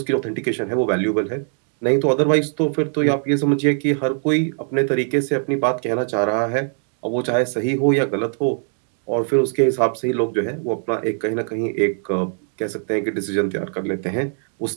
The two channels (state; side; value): silent; left; 57 dB below the other